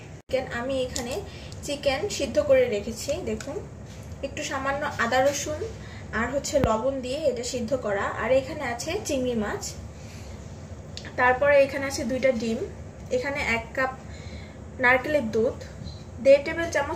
আমি এখানে চিকেন সিদ্ধ করে রেখেছি, দেখুন একটু সামান্য আদা রসুন আর হচ্ছে লবণ দিয়ে এটা সিদ্ধ করা। আর এখানে আছে চিংড়ি মাছ, তারপরে এখানে আছে 2টা ডিম, এখানে 1 কাপ নারকেলের দুধ, 1.5 টেবিল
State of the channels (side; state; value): both; identical; correlation 1.00